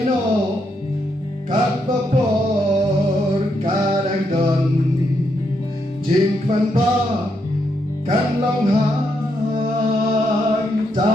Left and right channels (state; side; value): normal; both; correlation 0.79